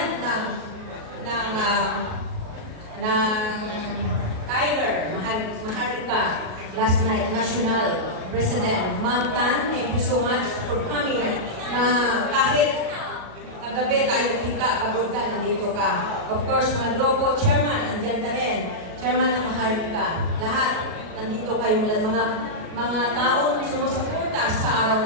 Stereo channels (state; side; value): late; left; 38 ms